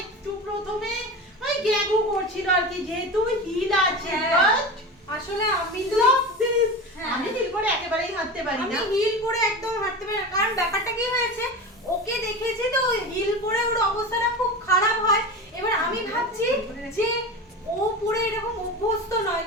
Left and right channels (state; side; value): normal; both; correlation 0.27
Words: একটু প্রথমে ওই গ্যাগু করছিল আর কি, যেহেতু হিল আছে। হ্যাঁ। আসলে আমি তো আমি হিল করে একেবারেই হাঁটতে পারি না। আমি হিল পরে একদম হাঁটতে পারি না, কারণ ব্যাপারটা কি হয়েছে, ওকে দেখেছি তো হিল পরে ওর অবস্থাটা খুব খারাপ হয়। এবার আমি ভাবছি যে ও পরে এরকম অভ্যস্ত নয়,